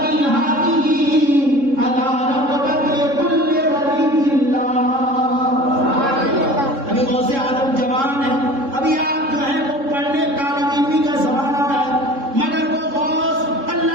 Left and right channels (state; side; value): late; left; 3.7 ms